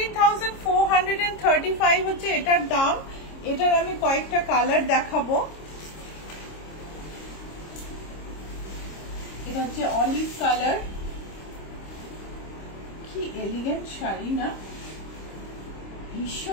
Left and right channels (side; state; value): right; late; 26 ms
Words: হচ্ছে এটার দাম। এটার আমি কয়েকটা কালার দেখাবো। এটা হচ্ছে অলিভ কালার, কি এলিগেন্ট শাড়ি না,